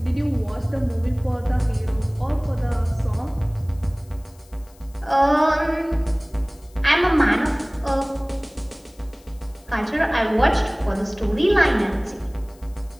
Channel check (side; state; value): left; noise; hiss, 28 dB below the sound